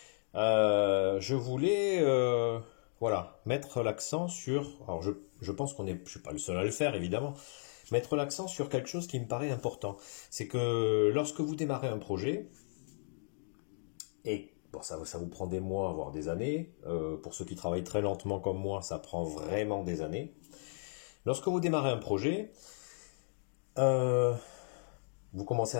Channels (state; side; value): silent; right; digital silence